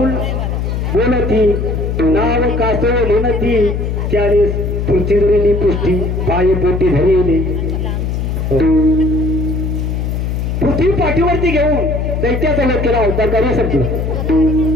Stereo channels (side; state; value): left; noise; hum, 1 dB below the sound